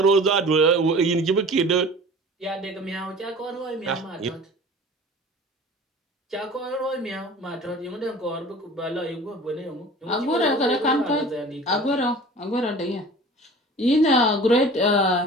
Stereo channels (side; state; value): both; normal; correlation 0.42